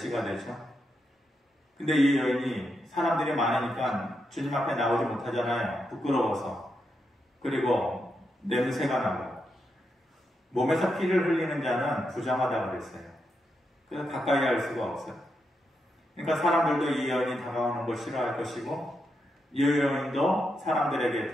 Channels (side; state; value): both; normal; correlation 0.84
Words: 되죠. 근데 이 여인이 사람들이 많으니까 주님 앞에 나오지 못하잖아요. 부끄러워서. 그리고 냄새가 나고, 몸에서 피를 흘리는 자는 부정하다고 그랬어요. 그래서 가까이 할 수가 없어요. 그러니까 사람들도 이 여인이 다가오는 걸 싫어할 것이고, 이 여인도 사람들에게